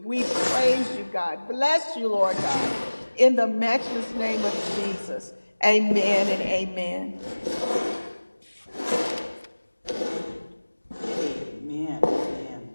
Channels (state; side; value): inverted; both; correlation -1.00